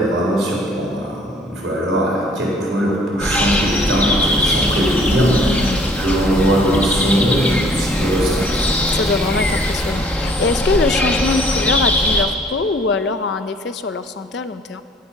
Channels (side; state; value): both; normal; correlation 0.57